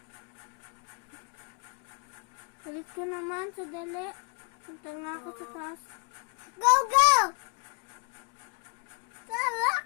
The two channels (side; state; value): right; quieter; 32.7 dB